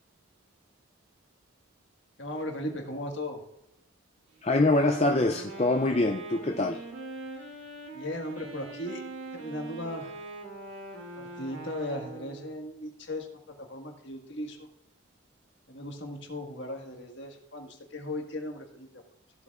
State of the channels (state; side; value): normal; both; correlation 0.40